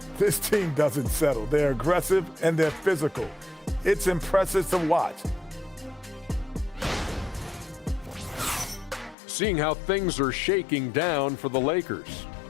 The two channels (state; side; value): drops out; right; at 9.2 s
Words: this team doesn't settle. They're aggressive and they're physical. It's impressive to watch. Seeing how things are shaking down for the Lakers.